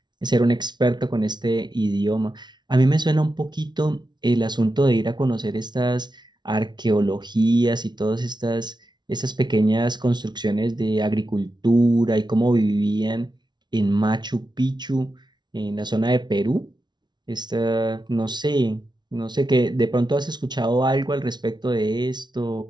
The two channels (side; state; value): left; late; 0.21 ms